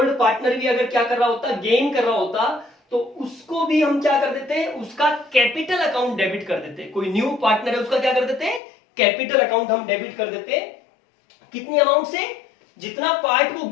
पार्टनर भी अगर क्या कर रहा होता, गेन कर रहा होता, तो उसको भी हम क्या कर देते, उसका कैपिटल अकाउंट डेबिट कर देते। कोई न्यू पार्टनर है उसका क्या कर देते, कैपिटल अकाउंट हम डेबिट कर देते। कितनी अमाउंट से, जितना पार्ट वो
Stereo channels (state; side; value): drops out; right; at 8.6 s